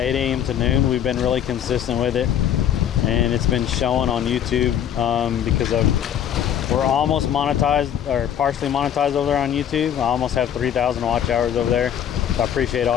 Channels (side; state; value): right; quieter; 9.6 dB